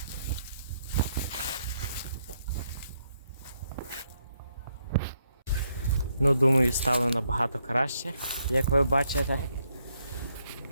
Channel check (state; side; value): inverted; both; correlation -0.76